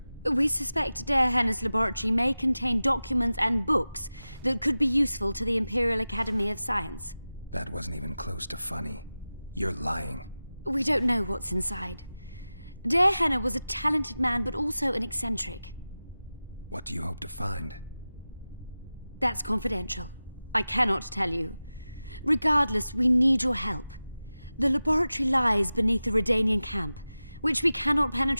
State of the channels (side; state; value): both; inverted; correlation -0.95